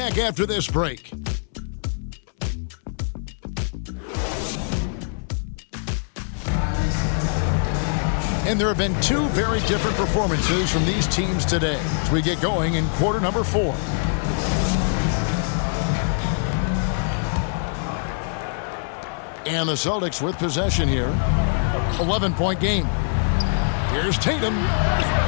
after this break. And there have been 2 very different performances from these teams today as we get going in quarter number 4. And the Celtics with possession here. 11-point game. Here's Tatum.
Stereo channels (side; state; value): right; silent; 63 dB below the other